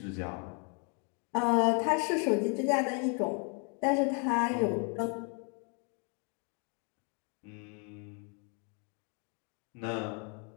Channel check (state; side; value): quieter; right; 37.7 dB